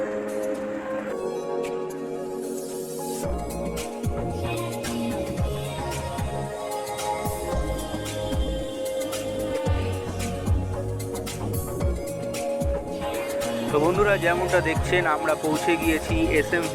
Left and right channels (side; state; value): both; identical; correlation 1.00